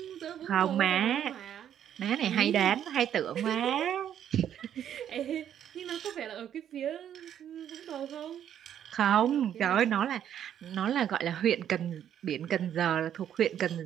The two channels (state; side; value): quieter; left; 9.9 dB